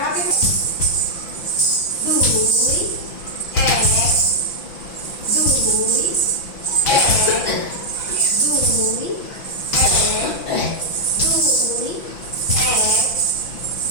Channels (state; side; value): late; right; 6.0 ms